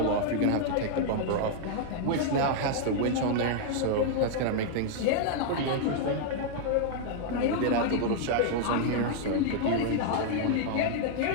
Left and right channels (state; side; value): different; both; correlation -0.01